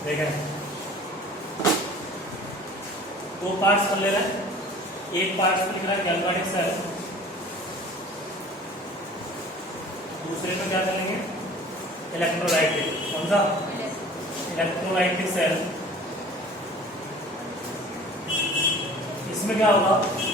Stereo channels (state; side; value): normal; both; correlation 0.45